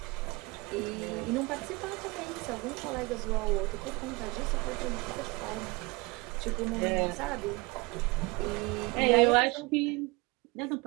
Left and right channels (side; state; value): left; quieter; 25.3 dB